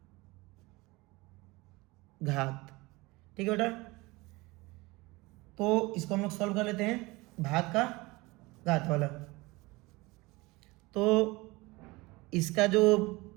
घात। ठीक है बेटा, तो इसको हम लोग सॉल्व कर लेते हैं, भाग का घात वाला। तो इसका जो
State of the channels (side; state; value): left; quieter; 22.7 dB